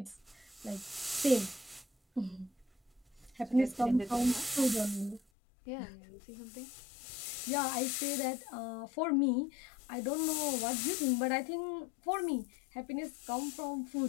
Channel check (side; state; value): right; drops out; at 5.2 s